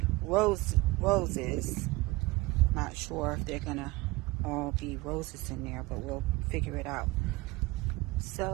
roses. Not sure if they're gonna all be roses in there, but we'll figure it out.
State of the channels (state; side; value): quieter; left; 21.7 dB